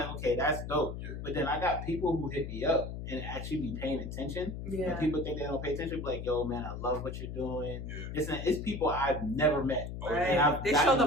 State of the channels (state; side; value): noise; left; hum, 7 dB below the sound